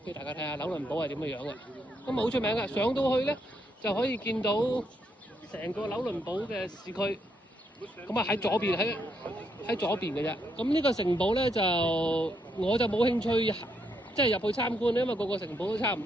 俾大家睇下紐倫堡係點嘅樣嘅。咁好出名嘅，上到去咧就可以見到成個紐倫堡嘅市區。咁啊喺左邊喺左邊嘅啫。咁呢個城堡咧就我就冇興趣即係入去參觀，因為個城堡都差唔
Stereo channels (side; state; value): both; normal; correlation 0.77